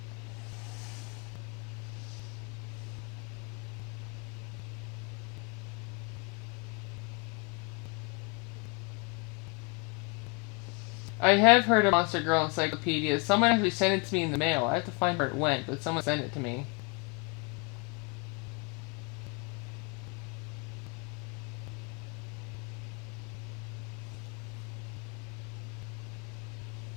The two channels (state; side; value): quieter; right; 32.1 dB